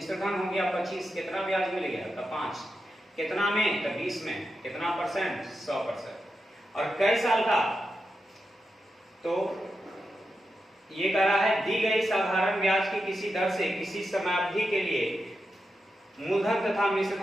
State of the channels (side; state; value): both; normal; correlation 0.88